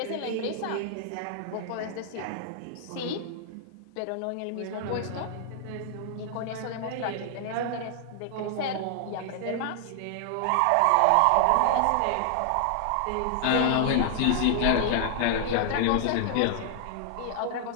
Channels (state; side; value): different; both; correlation -0.01